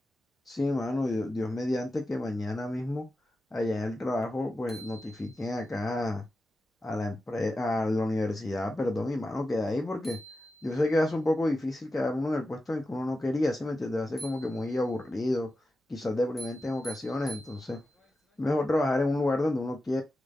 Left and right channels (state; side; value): normal; both; correlation 0.92